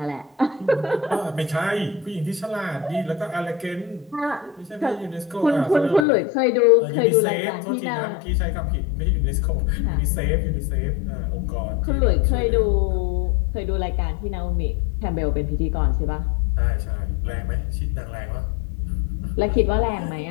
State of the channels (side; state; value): right; drops out; at 6.1 s